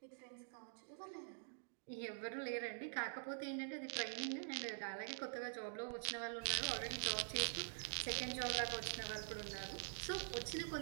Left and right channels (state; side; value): silent; left; digital silence